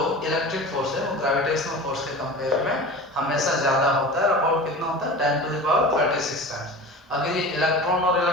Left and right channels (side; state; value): both; normal; correlation 0.34